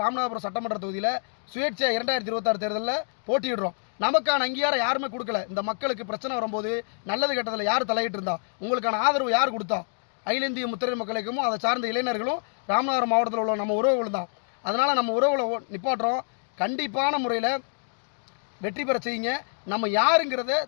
ராமநாதபுரம் சட்டமன்ற தொகுதியில் சுயேட்சையாக 2026 தேர்தலில் போட்டியிடுறோம். நமக்கான அங்கீகாரம் யாருமே கொடுக்கல. இந்த மக்களுக்கு பிரச்சனை வரும்போது நல்லது கெட்டதில் யார் தலையிட்டு இருந்தா, உங்களுக்கான ஆதரவு யார் கொடுத்தா? அகில இந்திய முத்திரையர் மக்கள் இயக்கமும் அதை சார்ந்த இளைஞர்களும் ராமநாதபுரம் மாவட்டத்தில் உள்ள நம்ம உறவுகள் தான். அதனால் நம்ம உறவுகளை நிப்பாட்டுறோம். கண்டிப்பான முறையில் வெற்றி பெற செய்யுங்க. நம்ம யாருங்கிறத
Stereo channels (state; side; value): silent; right; digital silence